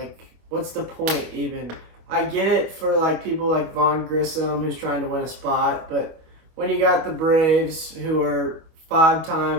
what's the point even? I get it for, like, people like Vaughn Grissom who's trying to win a spot, but when you got the Braves, who are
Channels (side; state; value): left; late; 25 ms